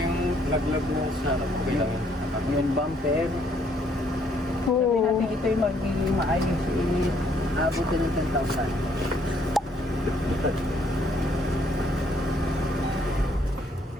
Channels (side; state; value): both; normal; correlation 0.67